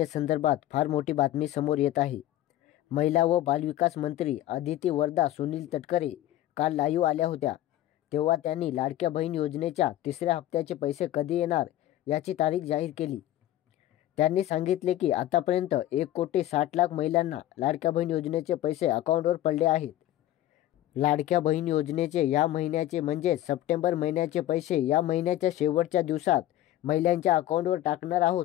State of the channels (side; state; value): right; quieter; 13.7 dB